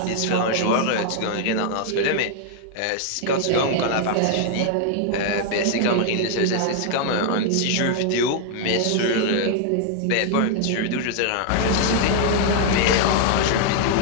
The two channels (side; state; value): both; different; correlation 0.00